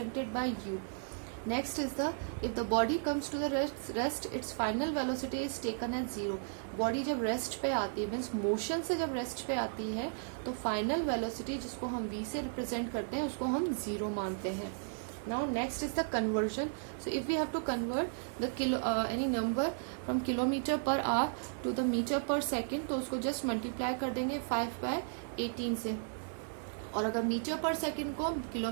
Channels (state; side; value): silent; left; digital silence